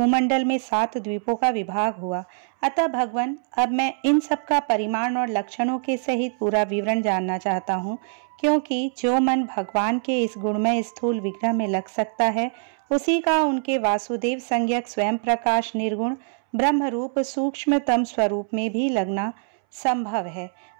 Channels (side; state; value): left; silent; 63 dB below the other